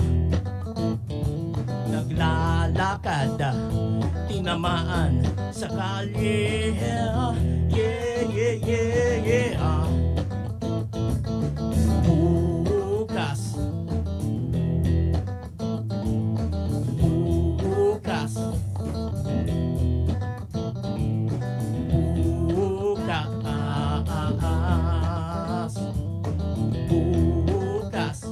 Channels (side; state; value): both; identical; correlation 1.00